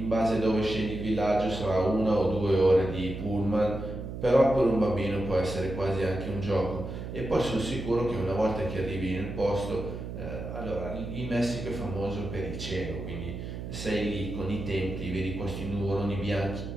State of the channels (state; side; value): noise; right; hum, 7 dB below the sound